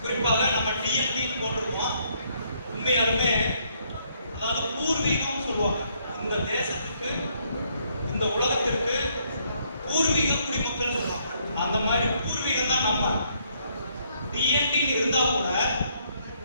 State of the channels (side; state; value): both; inverted; correlation -0.70